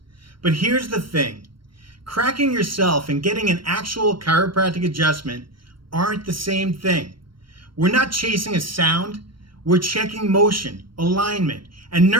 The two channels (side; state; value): left; late; 0.73 ms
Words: But here's the thing, cracking yourself and getting an actual chiropractic adjustment aren't the same thing. We're not chasing a sound, we're checking motion, alignment, and